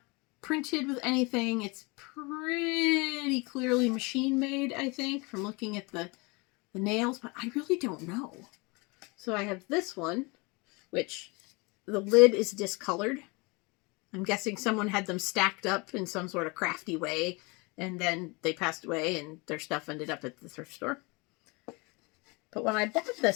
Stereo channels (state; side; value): quieter; right; 27.6 dB